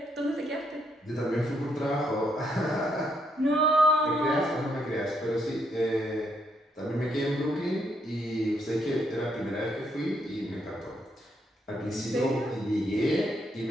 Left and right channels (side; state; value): both; normal; correlation 0.75